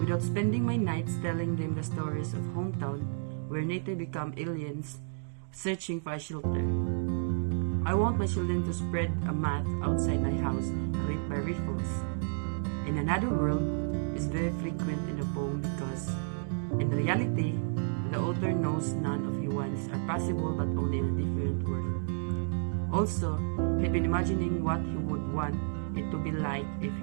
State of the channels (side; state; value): left; silent; digital silence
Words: without spending my nights telling them the stories of hometown where native become aliens searching for a shelter. I want my children to spread a mat outside my house ripped by rifles. In another world is very frequent in the poem because, in reality, the author knows none of his wants are possible but only in a different world. Also, he'd been imagining what he would want it to be like if